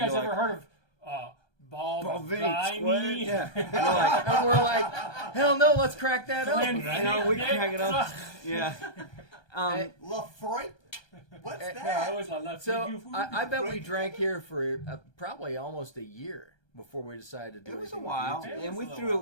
it guys and be ever like, heard of Balvenie Square? Balvenie? Yeah. And we're like, hell no, let's crack that open. You know, we crack it up. Yeah. Lafroy? What's I that? always love So I bet we drank here for probably almost a year before we decided to do It was a anything with while, YouTube.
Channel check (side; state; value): right; late; 1.2 ms